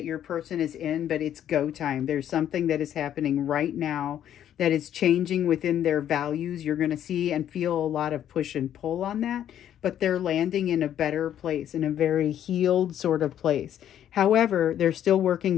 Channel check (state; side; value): quieter; right; 10.6 dB